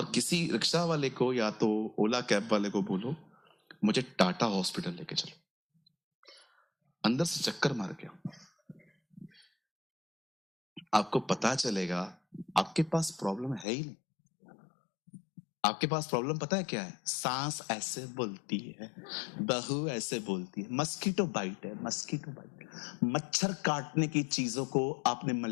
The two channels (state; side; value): drops out; right; at 13.7 s